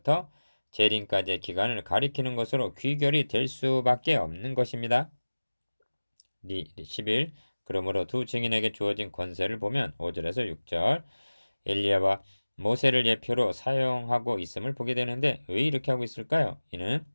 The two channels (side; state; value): both; inverted; correlation -1.00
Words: 재림까지의 기간을 가리키는 것으로 귀결이 될 수밖에 없는 것입니다. 11. 그러므로 두 증인에게 주어진 권세를 보면 5절에서 6절 엘리야와 모세를 예표로 사용하고 있음을 보게 되는데 왜 이렇게 하고 있을까요? 이는